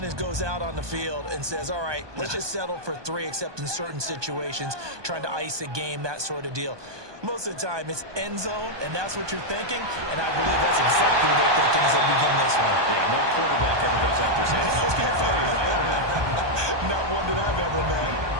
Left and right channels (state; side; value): late; left; 1.2 ms